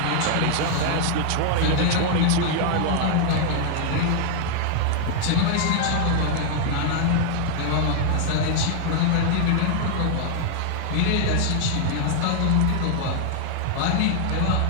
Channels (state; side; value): different; both; correlation 0.00